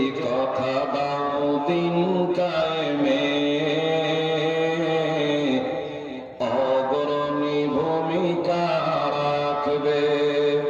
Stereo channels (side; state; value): both; identical; correlation 1.00